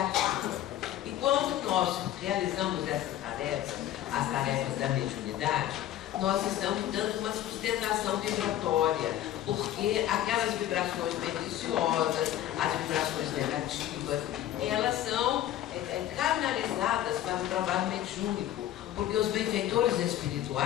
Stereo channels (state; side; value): quieter; right; 12.5 dB